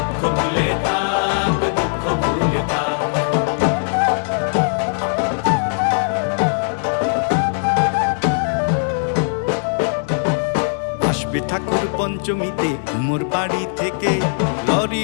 ভুলে থাক, দুঃখ ভুলে থাক। আসবে ঠাকুর পঞ্চমীতে কুমোর বাড়ি থেকে,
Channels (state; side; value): silent; right; 66 dB below the other